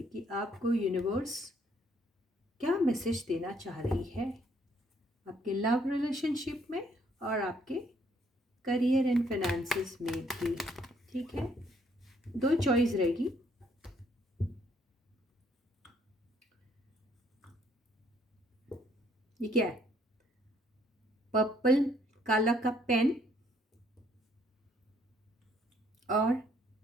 कि आपको यूनिवर्स क्या मैसेज देना चाह रही है आपके लव रिलेशनशिप में और आपके करियर एंड फाइनेंसेस में भी। ठीक है, दो चॉइस रहेगी। ये क्या है? पर्पल काला का पेन और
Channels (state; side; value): normal; both; correlation 0.67